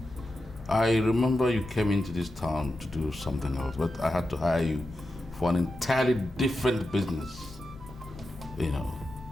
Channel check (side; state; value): left; noise; rumble, 18 dB below the sound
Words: I remember you came into this town to do something else, but I had to hire you for an entirely different business. You know,